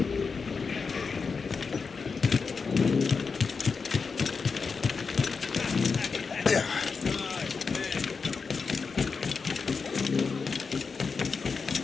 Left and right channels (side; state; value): right; quieter; 5.0 dB